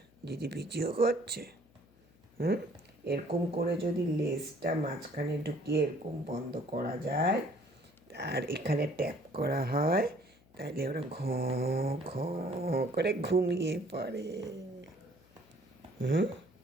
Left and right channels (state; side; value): noise; left; hum, 29 dB below the sound